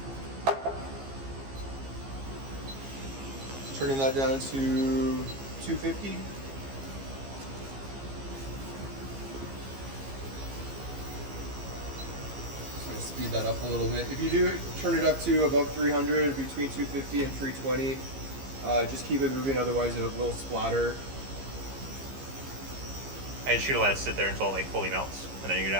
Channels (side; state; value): left; late; 15 ms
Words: Turning that down to 250. Speed that up a little bit. If you do turn it up to above 300, between 250 and 320, just keep it moving, otherwise it will splatter. And just let it sit there until it like fully melts, and then you can